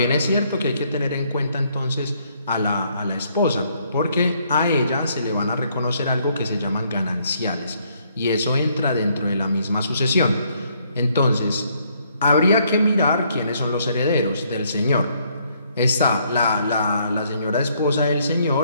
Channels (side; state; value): both; inverted; correlation -0.69